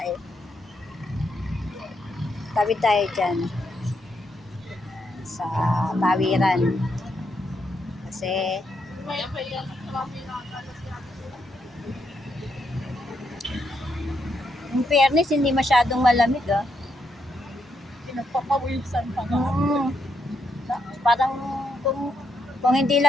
eh. Tawid tayo dyan. Sa tawiran. Kasi, in fairness, hindi masyadong malamig ah. Pinagpapawisan pa nga. Parang kung hindi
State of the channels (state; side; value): normal; both; correlation 0.79